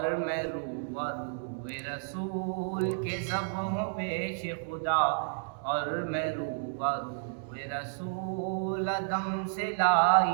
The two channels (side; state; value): left; silent; 57 dB below the other